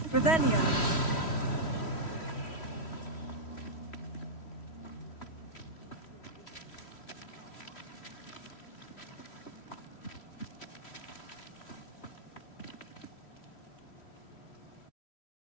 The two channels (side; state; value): right; late; 3.1 ms